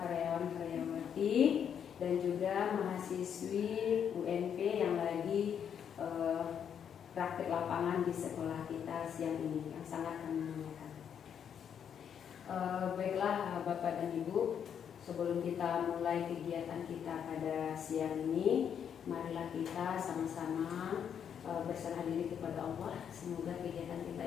karyawan-karyawati dan juga mahasiswi UNP yang lagi praktik lapangan di sekolah kita siang ini, yang sangat kami muliakan. Baiklah Bapak dan Ibu, sebelum kita mulai kegiatan kita pada siang ini, marilah kita sama-sama berserah diri kepada Allah. Semoga kegiatan kita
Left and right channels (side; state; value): right; quieter; 8.2 dB